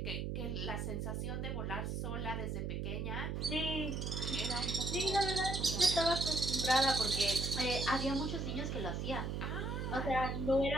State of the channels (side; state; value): right; noise; hum, 2 dB below the sound